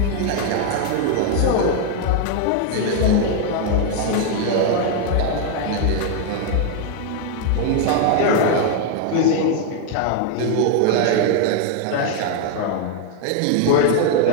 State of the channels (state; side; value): different; both; correlation 0.01